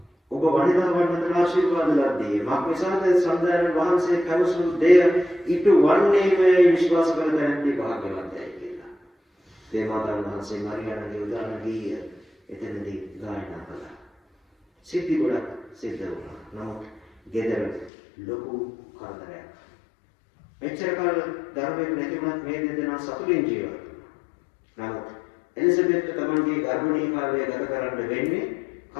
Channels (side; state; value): right; drops out; at 17.9 s